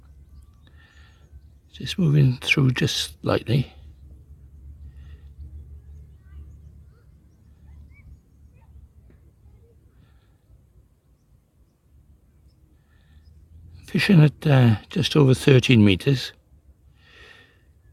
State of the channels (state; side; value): identical; both; correlation 1.00